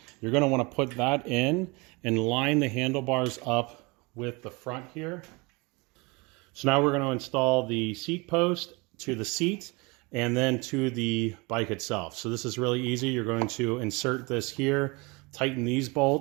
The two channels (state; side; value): quieter; left; 27.0 dB